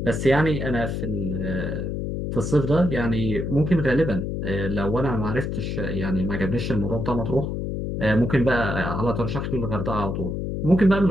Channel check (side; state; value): left; noise; hum, 3 dB below the sound